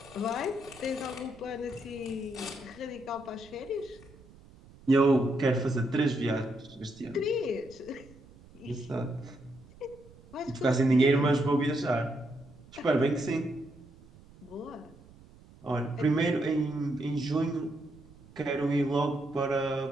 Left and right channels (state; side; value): noise; right; rumble, 23 dB below the sound